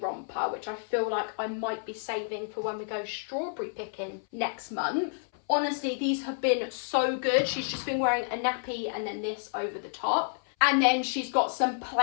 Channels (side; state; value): right; silent; 58 dB below the other